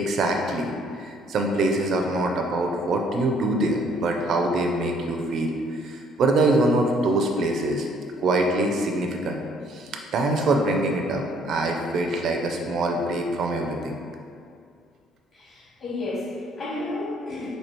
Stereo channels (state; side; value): normal; both; correlation 0.63